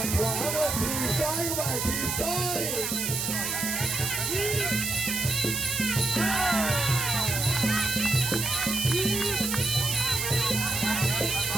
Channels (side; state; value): right; noise; hiss, 1 dB below the sound